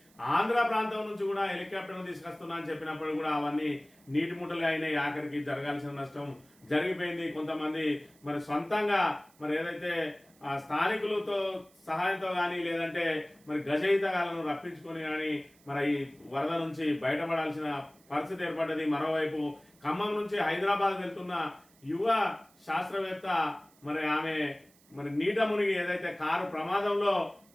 ఆంధ్ర ప్రాంతం నుంచి కూడా హెలికాప్టర్ తీసుకొస్తున్నా అని చెప్పినప్పుడు కూడా అవన్నీ నీటి ముట్టలుగా అయినాయి. ఆఖరికి జరగాల్సిన నష్టం జరిగిపోయింది. కొంతమంది మరి సొంతంగా మరి ఏదైతే స్థానికులతో సహాయంతో కానీ లేదంటే మరి గజయితగాలను రప్పించుకొని కానీ మరి ఈ వరద నుంచి బయటపడాల్సిన పరిస్థితి ఏర్పడ్డది. మరోవైపు ఖమ్మం నుంచి హైదరాబాద్ వెళ్తున్న యువ శాస్త్రవేత్త మరి ఆమె మరి నీట మునిగి ఏదైతే కారు ప్రమాదంలో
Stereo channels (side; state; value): right; noise; hiss, 29 dB below the sound